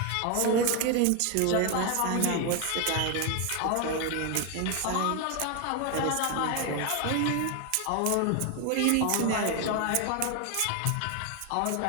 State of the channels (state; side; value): different; both; correlation 0.01